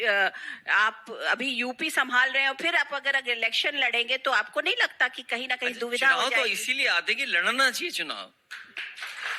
आप अभी यूपी संभाल रहे हो, फिर आप अगर इलेक्शन लड़ेंगे तो आपको नहीं लगता कि कहीं ना कहीं दुविधा हो चुनाव तो जाएगी? इसीलिए आते कि लड़ना चाहिए चुनाव,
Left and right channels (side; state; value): both; identical; correlation 1.00